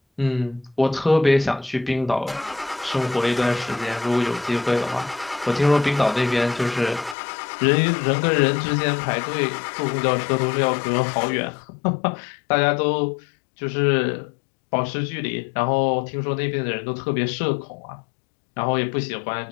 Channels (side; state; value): right; drops out; at 7.2 s